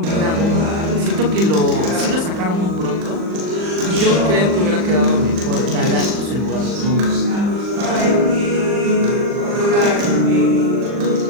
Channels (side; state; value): left; late; 39 ms